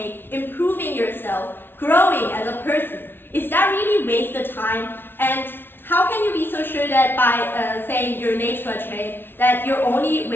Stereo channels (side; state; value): right; late; 0.10 ms